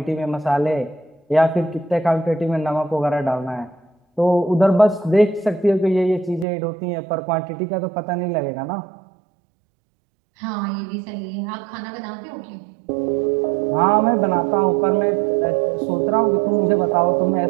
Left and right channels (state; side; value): drops out; left; at 6.5 s